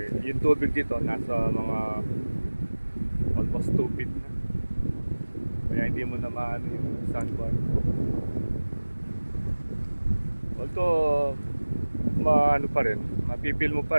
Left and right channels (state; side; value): inverted; both; correlation -1.00